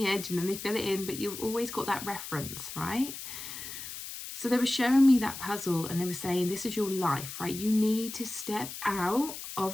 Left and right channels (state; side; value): noise; left; hiss, 9 dB below the sound